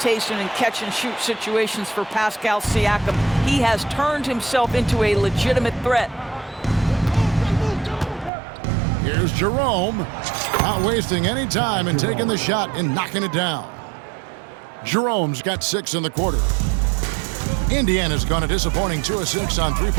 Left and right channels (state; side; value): drops out; left; at 8.3 s